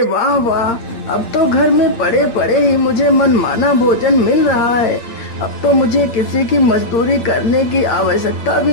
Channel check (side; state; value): right; late; 8.7 ms